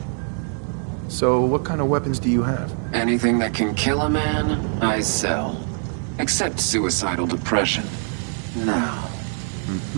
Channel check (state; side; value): silent; left; 55 dB below the other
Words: So, what kind of weapons do you have? Anything that can kill a man, I sell. Except suicidal depression. Now.